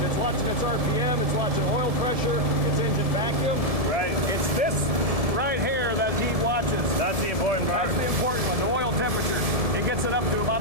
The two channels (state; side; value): late; left; 1.7 ms